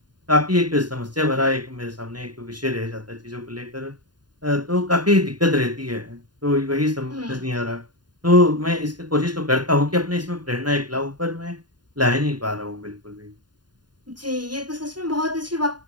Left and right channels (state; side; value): late; left; 0.70 ms